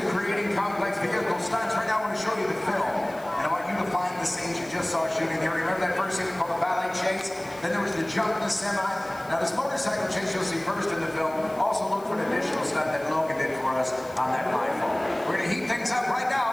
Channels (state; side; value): noise; left; hiss, 23 dB below the sound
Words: creating complex vehicle stunts. Right now I want to show you the film. And I want you to find the scenes you just saw shooting here. Remember that first scene called the ballet chase? Then there was the jump in the semi. Now this motorcycle chase you'll see first in the film. Also look for an additional stunt that Logan did for us on that rifle. We're going to heat things up right